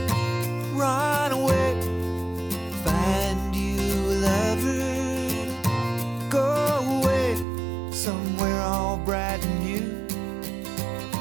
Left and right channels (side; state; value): left; drops out; at 7.5 s